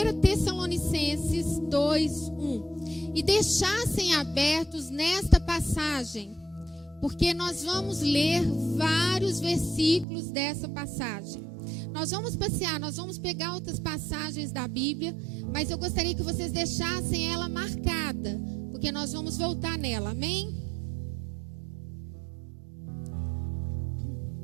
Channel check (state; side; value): drops out; left; at 10.1 s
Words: Tessalonicenses 2:1 e deixassem abertos nesta passagem, porque nós vamos ler vários versículos dessa passagem. Nós vamos passear, nós vamos pegar outras passagens da Bíblia, mas eu gostaria que vocês deixassem ela marcada, porque nós vamos voltar nela, amém?